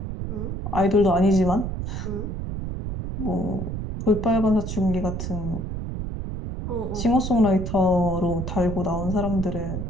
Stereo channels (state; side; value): noise; right; rumble, 5 dB below the sound